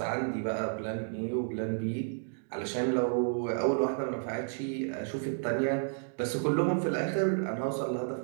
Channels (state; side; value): silent; left; digital silence